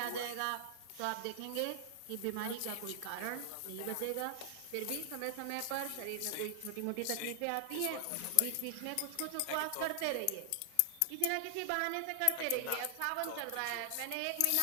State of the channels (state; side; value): different; both; correlation 0.00